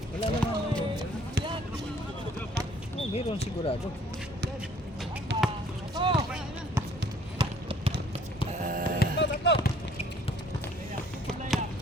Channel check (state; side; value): normal; both; correlation 0.58